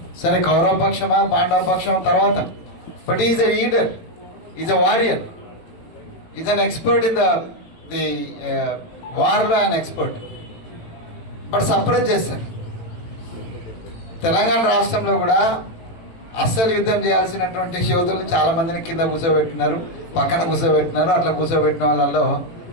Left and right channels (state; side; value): late; right; 18 ms